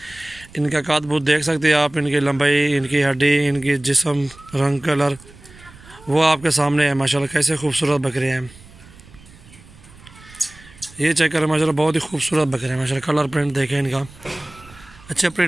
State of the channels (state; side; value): noise; right; rumble, 22 dB below the sound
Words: इनका काद बूत देख सकते हैं आप, इनकी लंबाई, इनकी हड्डी, इनकी जिस्म, रंग, कलर वो आपके सामने है माशाल्लाह। कैसे खूबसूरत बकरे हैं ये, चेक करें माशाल्लाह। बहुत ही खूबसूरत बकरे हैं माशाल्लाह। कलर प्रिंट देखें इनका, अच्छे